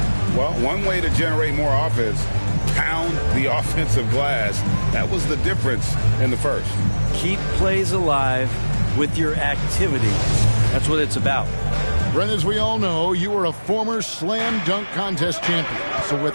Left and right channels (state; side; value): inverted; both; correlation -1.00